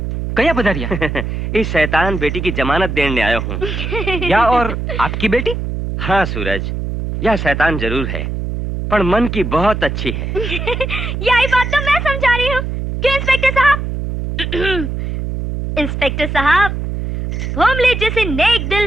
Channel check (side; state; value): right; noise; hum, 4 dB below the sound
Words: कया पधारिया? इस शैतान बेटी की जमानत देने आया हूँ। या और आपकी बेटी? हाँ सूरज, यह शैतान जरूर है पर मन की बहुत अच्छी है। यही बात तो मैं समझा रही हूँ कि इंस्पेक्टर साहब इंस्पेक्टर साहब, भोमले जैसे नेक दिल